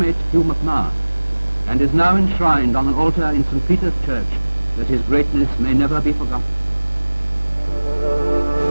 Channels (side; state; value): both; inverted; correlation -1.00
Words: Hugh MacMahon, and is now enshrined on an altar in St. Peter's Church, that his greatness may never be forgotten.